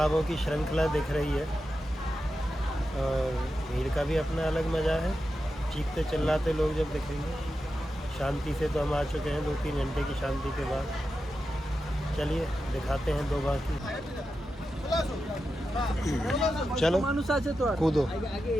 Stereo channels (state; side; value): normal; both; correlation 0.90